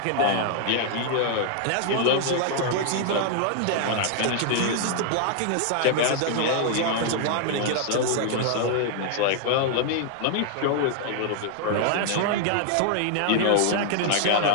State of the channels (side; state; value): both; different; correlation 0.00